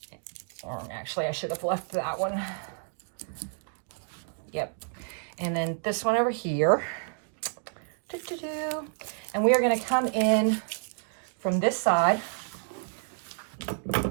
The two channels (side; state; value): left; silent; digital silence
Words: Or actually I should have left that one. Yep. And then this one over here. And we are gonna come in from this side.